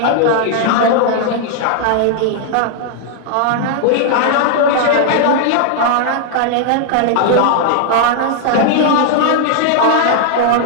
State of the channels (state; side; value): different; both; correlation 0.00